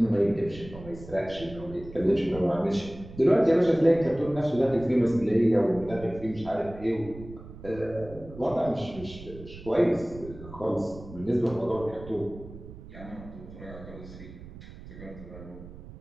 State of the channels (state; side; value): noise; right; rumble, 15 dB below the sound